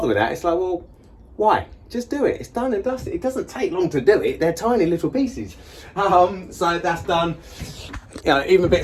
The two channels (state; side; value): identical; both; correlation 1.00